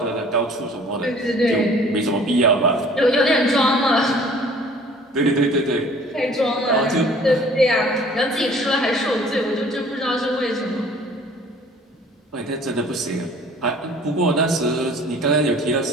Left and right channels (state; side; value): normal; both; correlation 0.51